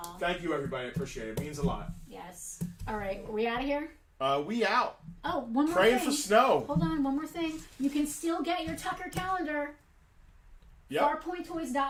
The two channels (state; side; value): identical; both; correlation 1.00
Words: Thank you, everybody. I appreciate it. It means a lot. Yes. All right. Are we out of here? We out. Oh, one more Praying thing. for snow. Hold on. One more thing. You can still get your Tucker calendar. Yep.